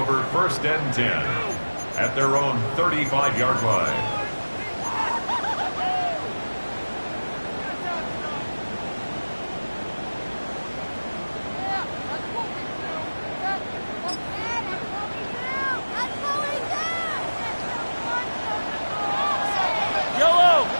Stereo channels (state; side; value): inverted; both; correlation -1.00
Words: first and 10 at their own 35-yard line. Yellow.